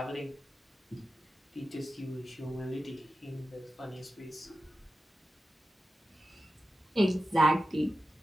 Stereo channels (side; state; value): both; normal; correlation 0.92